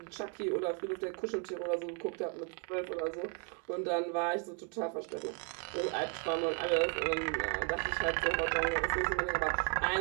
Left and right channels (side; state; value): left; quieter; 34.6 dB